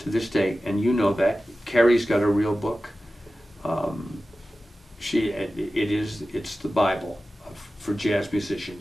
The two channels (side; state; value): both; normal; correlation 0.95